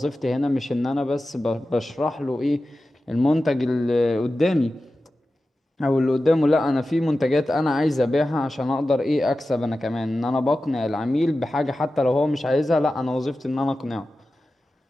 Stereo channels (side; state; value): both; normal; correlation 0.94